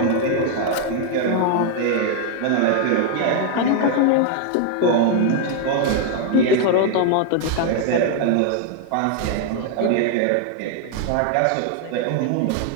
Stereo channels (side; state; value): both; different; correlation 0.00